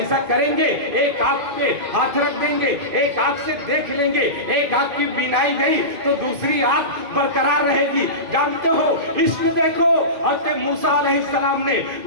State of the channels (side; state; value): left; late; 2.5 ms